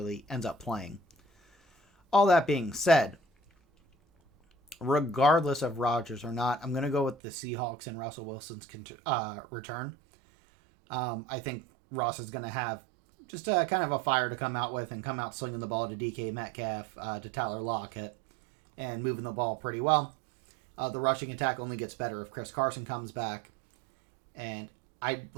ends up playing. All that being said, regardless of Rodgers or not, I'm going to go with the Seahawks and Russell Wilson's return. I think Ross is going to have just a kind of a fire to come out with and come out slinging the ball to DK Metcalf, to Tyler Lockett, and moving the ball pretty well. The rushing attack only gets better if Chris Carson comes back. And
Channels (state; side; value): drops out; left; at 7.2 s